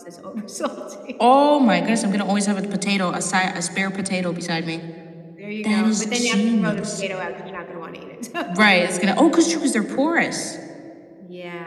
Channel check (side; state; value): both; identical; correlation 1.00